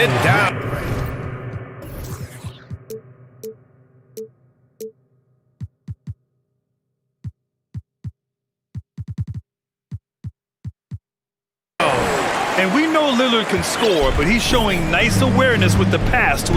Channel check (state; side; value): identical; both; correlation 1.00